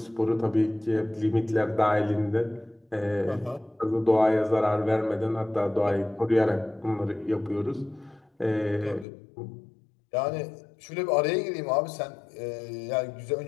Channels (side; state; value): right; drops out; at 9.1 s